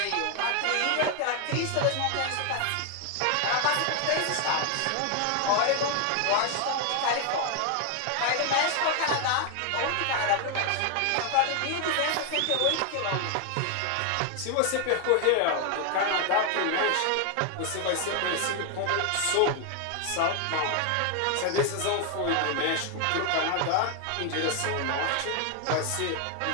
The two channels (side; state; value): both; different; correlation 0.01